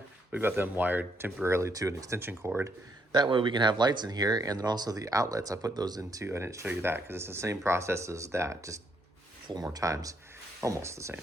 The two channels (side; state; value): both; normal; correlation 0.73